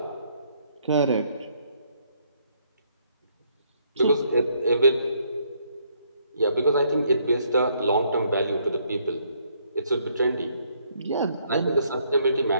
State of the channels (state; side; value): inverted; both; correlation -0.69